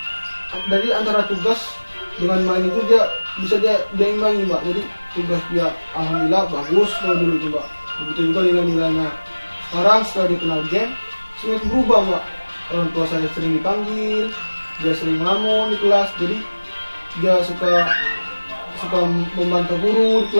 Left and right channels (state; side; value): inverted; both; correlation -1.00